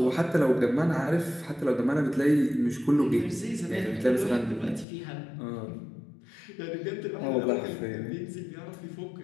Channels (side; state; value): right; drops out; at 4.9 s